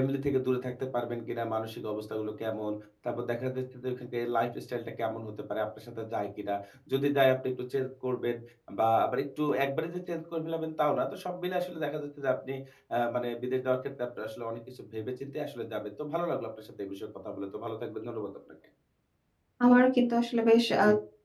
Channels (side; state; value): both; identical; correlation 1.00